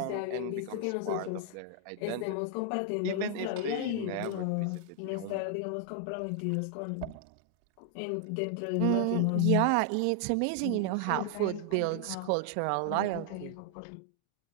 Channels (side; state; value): both; different; correlation 0.00